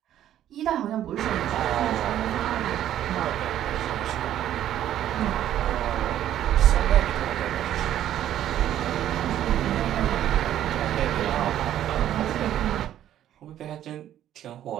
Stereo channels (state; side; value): quieter; left; 11.6 dB